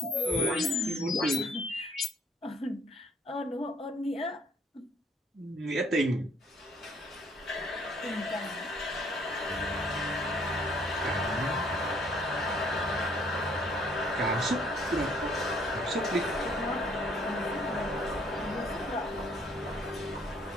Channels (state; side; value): normal; both; correlation 0.62